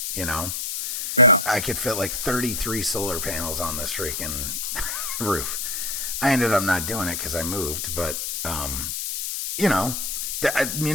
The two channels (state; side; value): noise; left; hiss, 2 dB below the sound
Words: Yeah. I could fit like 33 solar panels on this freaking roof. I ended up not doing it because I moved, but